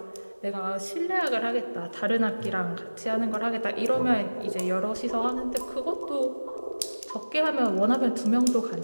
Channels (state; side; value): inverted; both; correlation -1.00